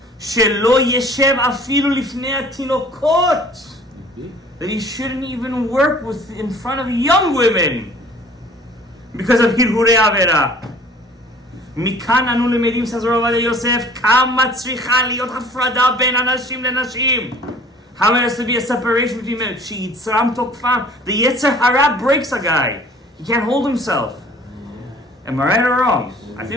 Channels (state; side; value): normal; both; correlation 0.51